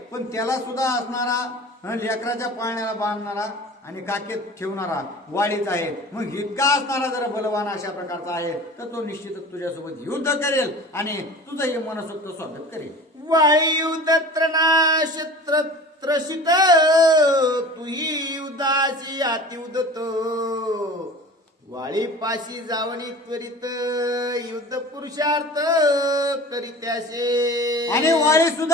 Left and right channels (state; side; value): normal; both; correlation 0.39